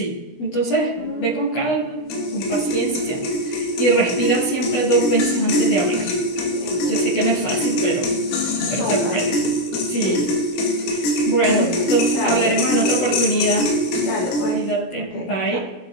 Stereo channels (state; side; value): late; right; 16 ms